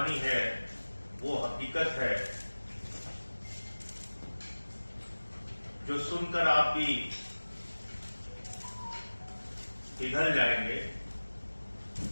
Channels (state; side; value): inverted; both; correlation -1.00